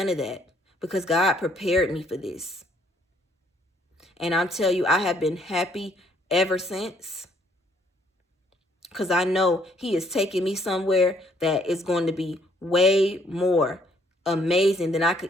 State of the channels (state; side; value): normal; both; correlation 0.65